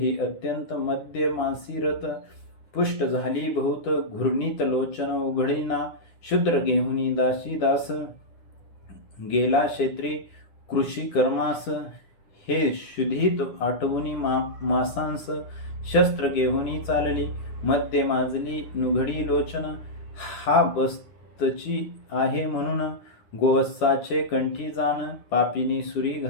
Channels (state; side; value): late; right; 9.8 ms